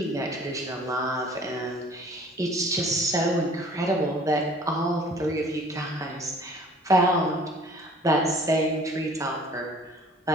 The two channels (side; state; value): both; normal; correlation 0.51